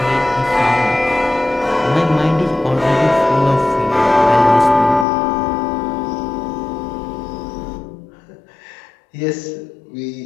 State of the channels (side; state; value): right; drops out; at 5.1 s